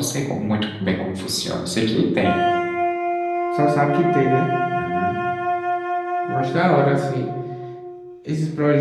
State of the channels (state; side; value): identical; both; correlation 1.00